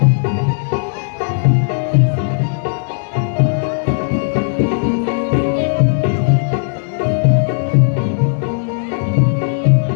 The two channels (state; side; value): silent; right; 68 dB below the other